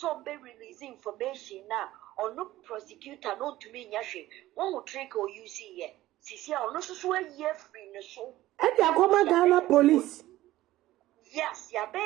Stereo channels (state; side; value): quieter; left; 15.9 dB